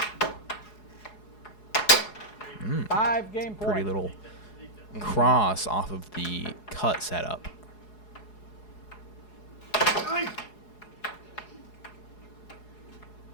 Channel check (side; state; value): right; late; 4.8 ms